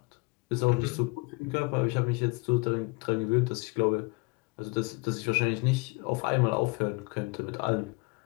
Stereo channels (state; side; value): quieter; right; 28.6 dB